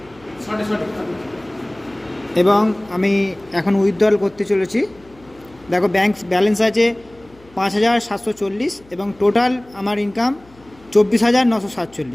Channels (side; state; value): left; noise; hum, 27 dB below the sound